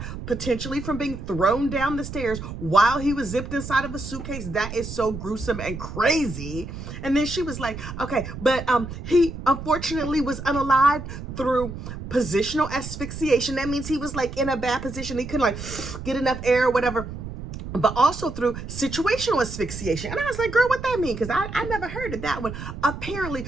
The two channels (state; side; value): noise; right; rumble, 9 dB below the sound